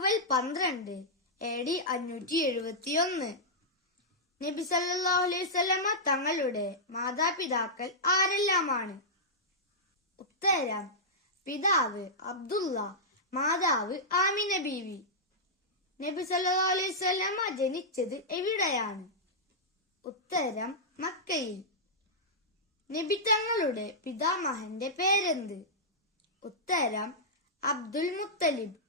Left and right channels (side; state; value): both; normal; correlation -0.11